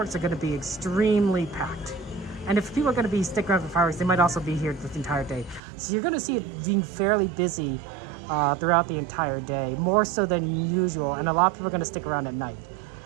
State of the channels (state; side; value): drops out; left; at 5.6 s